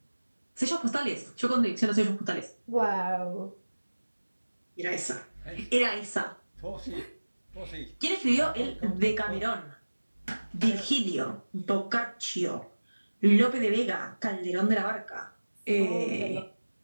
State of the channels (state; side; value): inverted; both; correlation -1.00